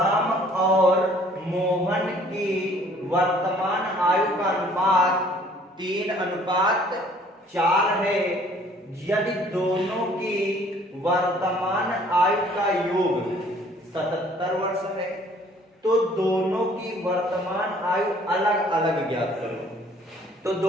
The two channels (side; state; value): both; normal; correlation 0.57